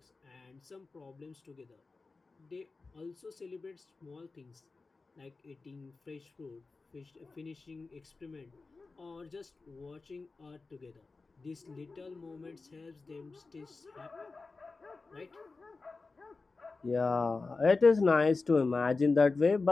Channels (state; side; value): quieter; right; 3.9 dB